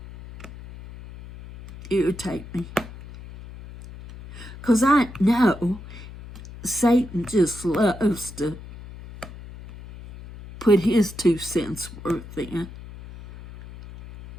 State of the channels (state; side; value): noise; left; hum, 15 dB below the sound